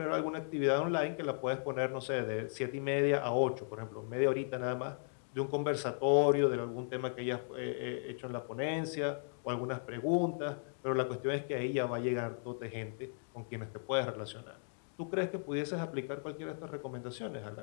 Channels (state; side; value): silent; right; digital silence